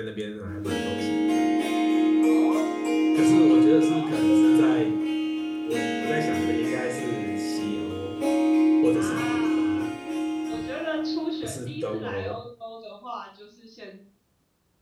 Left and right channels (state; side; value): identical; both; correlation 1.00